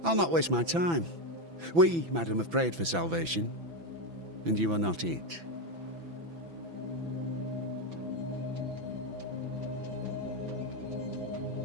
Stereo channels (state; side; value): late; left; 6.0 ms